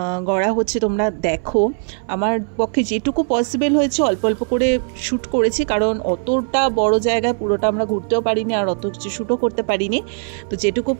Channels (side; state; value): left; silent; 62 dB below the other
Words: গড়া হচ্ছে তোমরা দেখো। আমার পক্ষে যেটুকু পসিবল হয়েছে অল্প অল্প করে শ্যুট করেছি, কারণ অতটা বড় জায়গায় পুরোটা আমরা ঘুরতেও পারিনি আর অত কিছু শ্যুটও করতে পারিনি। তো যেটুকু